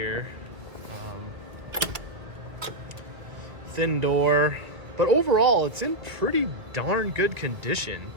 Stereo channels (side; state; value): left; late; 1.5 ms